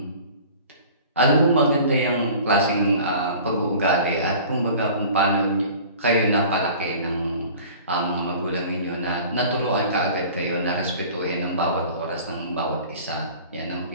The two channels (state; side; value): inverted; both; correlation -0.44